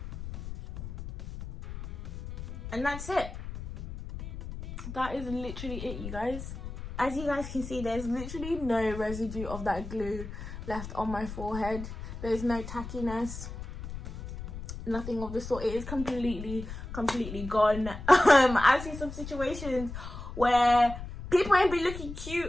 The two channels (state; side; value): noise; left; rumble, 9 dB below the sound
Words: And that's it. That is literally it, you guys. As you guys can see, there's literally no residue of that glue left on my forehead. There's no tackiness, nothing of the sort. It is completely gone. I've seen some situations where people ain't be looking